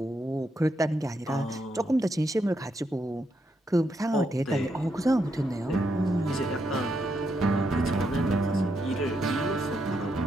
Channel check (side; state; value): both; normal; correlation 0.80